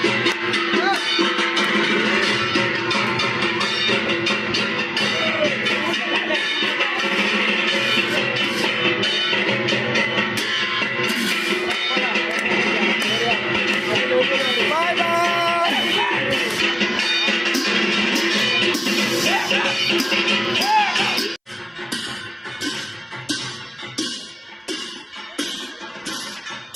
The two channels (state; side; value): identical; both; correlation 1.00